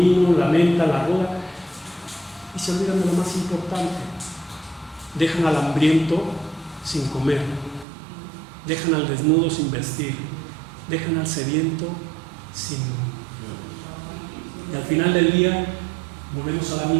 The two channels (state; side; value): drops out; left; at 7.9 s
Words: la menta, la ruda, y se olvidan de lo más importante. Dejan al hambriento sin comer, dejan al desnudo sin vestir, dejan al sediento sin... Y al final del día volvemos a la